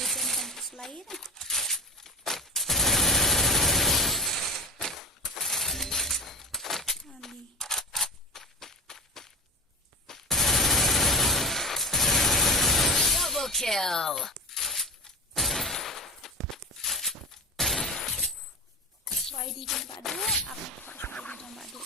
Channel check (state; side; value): normal; both; correlation 0.33